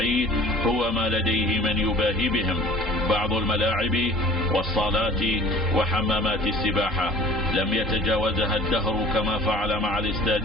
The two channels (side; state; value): both; normal; correlation 0.47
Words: هو ما لديه من يباهي بهم. بعض الملاعب والصالات وحمامات السباحة لم يتجاوزها الدهر، كما فعل مع